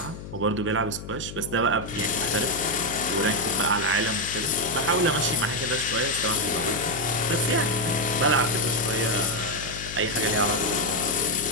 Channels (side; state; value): left; noise; hum, 11 dB below the sound